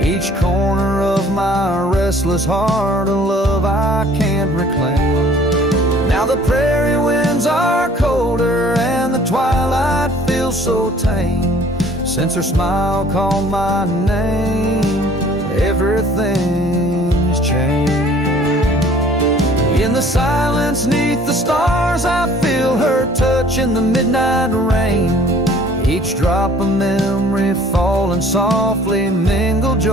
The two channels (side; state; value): both; normal; correlation 0.54